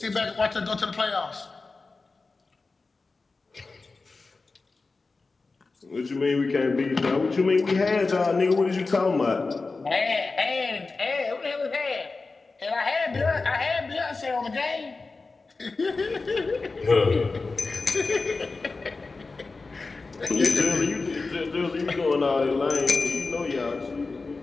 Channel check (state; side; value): quieter; right; 3.9 dB